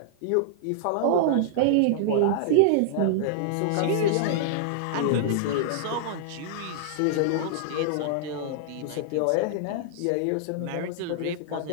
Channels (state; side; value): different; both; correlation -0.01